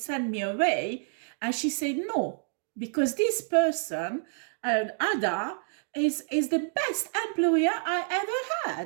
me away. And she said no, because this person, Ada, is the best employer I ever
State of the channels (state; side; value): silent; left; digital silence